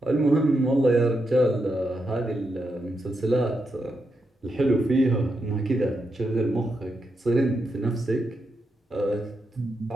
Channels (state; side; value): normal; both; correlation 0.84